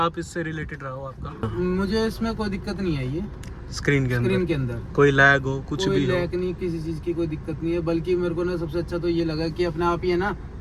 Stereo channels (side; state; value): both; identical; correlation 1.00